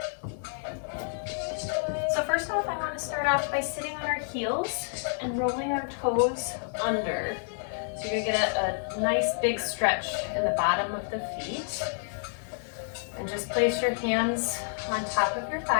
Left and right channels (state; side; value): silent; right; digital silence